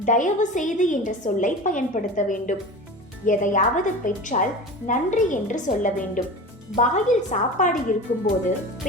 தயவு செய்து என்ற சொல்லை பயன்படுத்த வேண்டும். எதையாவது பெற்றால் நன்றி என்று சொல்ல வேண்டும். வாயில் சாப்பாடு இருக்கும்போது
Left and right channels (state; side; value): normal; both; correlation 0.32